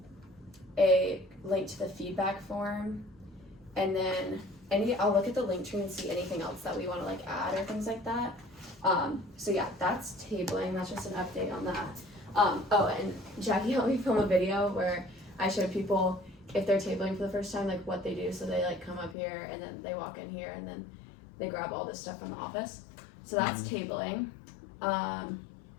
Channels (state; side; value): drops out; right; at 19.2 s